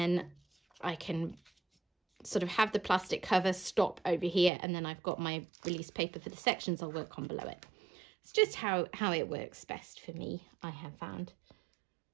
I can sort of have the plastic cover stop over here, and then I've got my release paper for the sections I'll work on below it. It's just how it works best for me, I have found.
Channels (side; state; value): left; drops out; at 4.5 s